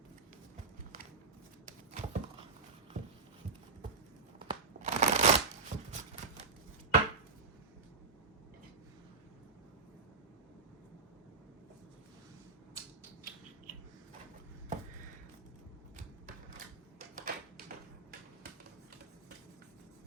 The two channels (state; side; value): quieter; left; 4.3 dB